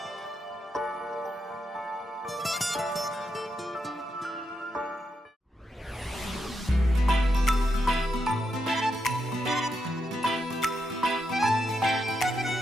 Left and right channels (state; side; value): normal; both; correlation 0.83